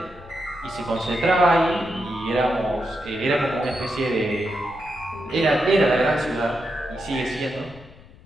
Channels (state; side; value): noise; left; rumble, 22 dB below the sound